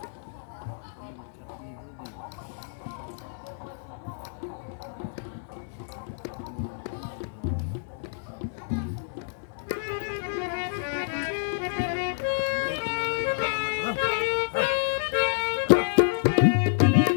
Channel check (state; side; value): silent; right; 59 dB below the other